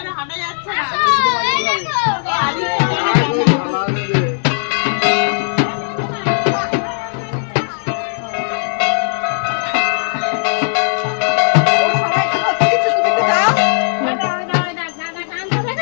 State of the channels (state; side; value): silent; right; digital silence